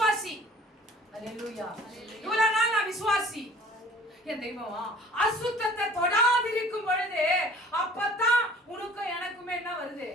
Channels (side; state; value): both; normal; correlation 0.50